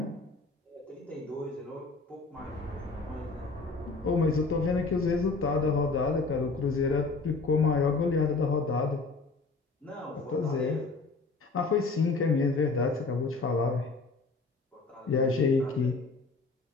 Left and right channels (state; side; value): quieter; right; 3.9 dB